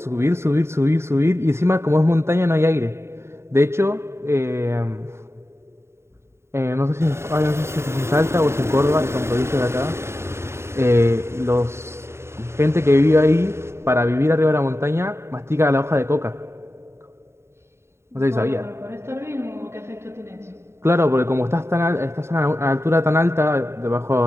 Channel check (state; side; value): late; left; 0.13 ms